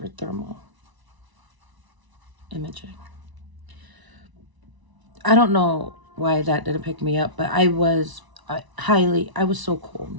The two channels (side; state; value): left; late; 1.0 ms